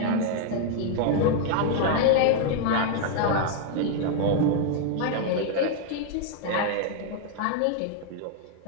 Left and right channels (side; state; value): both; different; correlation 0.00